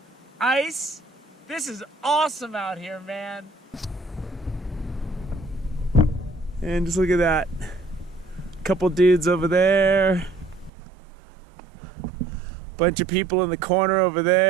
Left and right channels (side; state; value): left; drops out; at 10.7 s